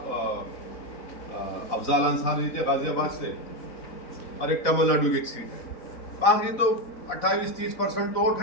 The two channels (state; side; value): late; right; 4.1 ms